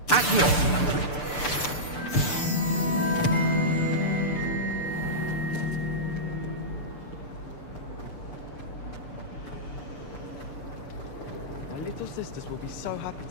My little sisters will be so happy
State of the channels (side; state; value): right; late; 6.8 ms